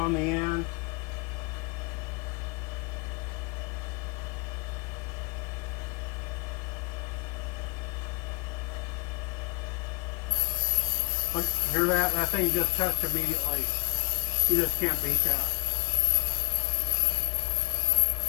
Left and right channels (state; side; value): quieter; right; 27.7 dB